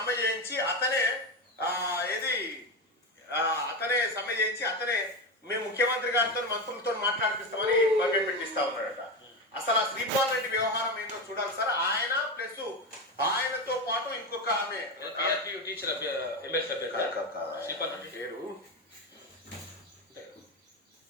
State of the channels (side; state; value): both; normal; correlation 0.16